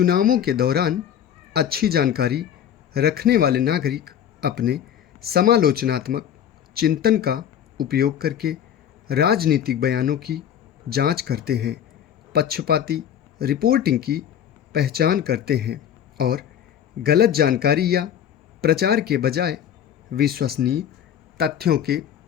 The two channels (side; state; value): right; quieter; 9.6 dB